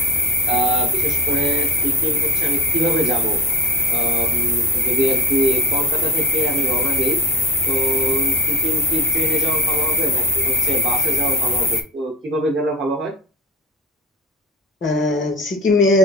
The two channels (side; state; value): both; normal; correlation 0.31